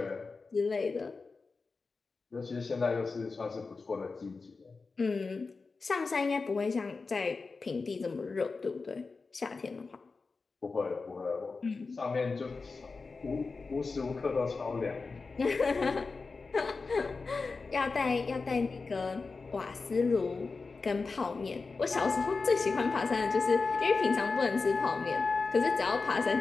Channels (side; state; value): right; quieter; 4.2 dB